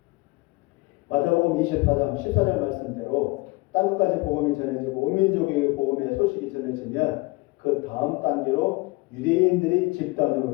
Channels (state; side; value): quieter; right; 24.3 dB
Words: 마태복음 24장 14절 말씀대로 땅끝까지 복음이 전해지고 온 민족에게 복음의 소식이 전해지면 그 다음 단계로 유대인들이